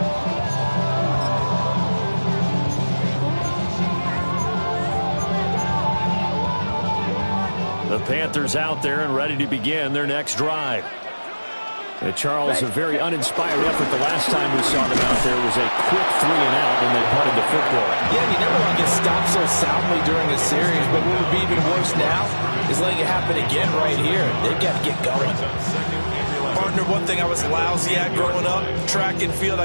The Panthers out there and ready to begin their next drive. Charles, a very uninspired effort. The last time we saw them out there was a quick 3 and out, and they punted the football. Yeah, you never want to get stopped so soundly during a series, but what would be even worse now is letting it happen again right here. They've got to get going. Partner, one thing I was lousy at growing up, track and field,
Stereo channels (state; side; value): inverted; both; correlation -1.00